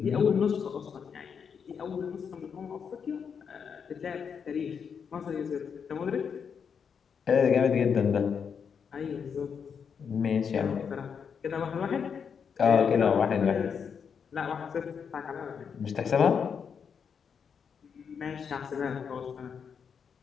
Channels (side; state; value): right; quieter; 6.7 dB